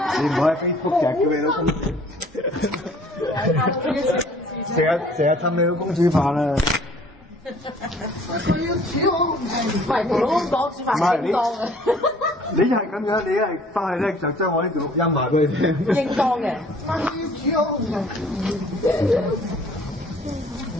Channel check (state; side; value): normal; both; correlation 0.55